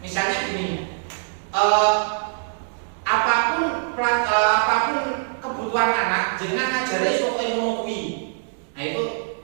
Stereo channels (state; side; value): silent; left; digital silence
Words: gini, apapun kebutuhan anak, jangan ngajari soal ilmu kuwi. Nah itu